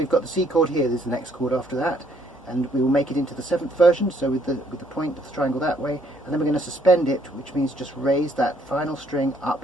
got the C chord here, there's the next chord after that, and we will make it into the 7th version, so with the point of the triangle that way, and then we're going to suspend it, which means just raise that final string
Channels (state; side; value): normal; both; correlation 0.67